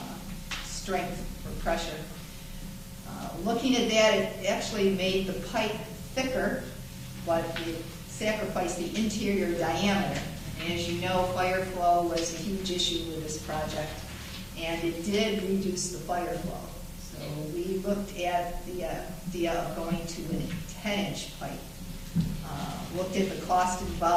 strength for pressure. Looking at that, it actually made the pipe thicker, but it sacrificed the interior diameter. And as you know, fire flow was a huge issue with this project, and it did reduce the fire flow. So we looked at the idea of going to a 10-inch pipe. Looked at the cost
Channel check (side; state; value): both; identical; correlation 1.00